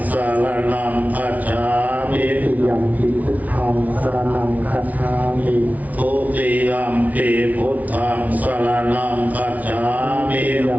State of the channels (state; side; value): late; left; 0.073 ms